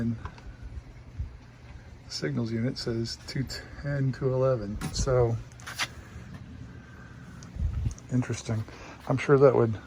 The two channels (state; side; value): identical; both; correlation 1.00